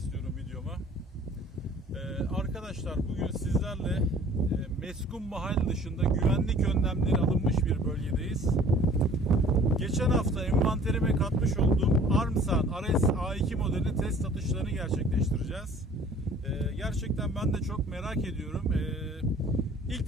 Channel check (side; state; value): both; normal; correlation 0.51